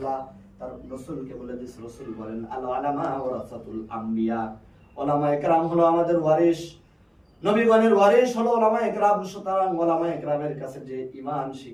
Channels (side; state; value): both; identical; correlation 1.00